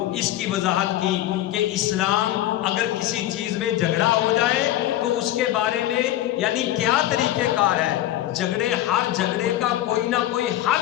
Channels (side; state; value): right; quieter; 13.8 dB